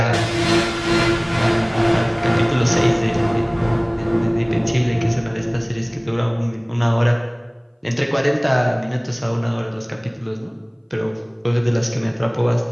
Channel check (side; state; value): both; identical; correlation 1.00